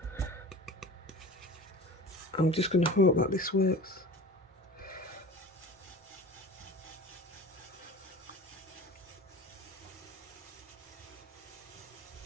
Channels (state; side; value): normal; both; correlation 0.38